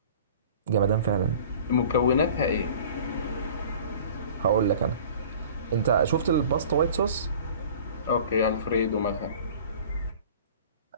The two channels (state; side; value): inverted; both; correlation -0.44